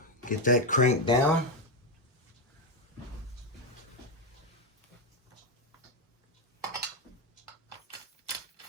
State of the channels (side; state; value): both; normal; correlation 0.08